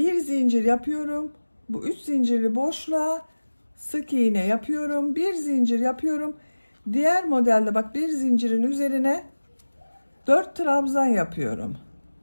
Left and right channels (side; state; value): both; inverted; correlation -1.00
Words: zincir yapıyorum. Bu 3 zincirli boşluğa sık iğne yapıyorum. Bir zincir yapıyorum. Diğer modelde bak, bir zincirin üzerine 4 trabzan yapıyorum.